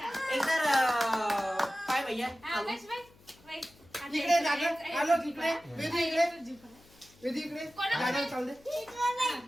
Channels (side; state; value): left; noise; hum, 27 dB below the sound